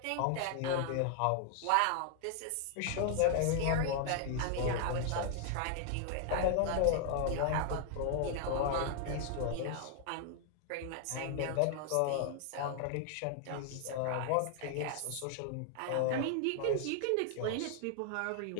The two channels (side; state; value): both; different; correlation 0.00